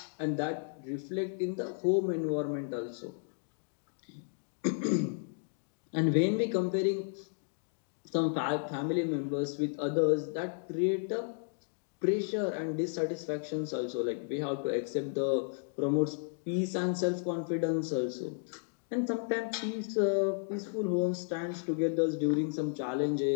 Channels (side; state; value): right; silent; digital silence